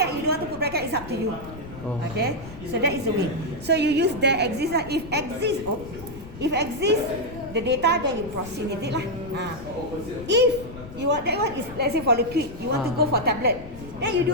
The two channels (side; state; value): left; noise; rumble, 15 dB below the sound